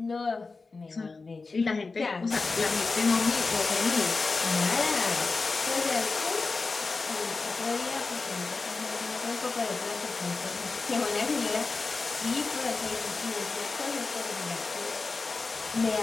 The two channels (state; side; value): quieter; right; 4.0 dB